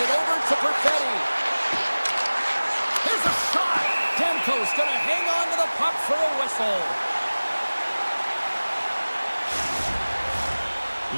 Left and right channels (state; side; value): inverted; both; correlation -1.00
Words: over to Perfetti. There's a shot. Demko's going to hang on to the puck for a whistle.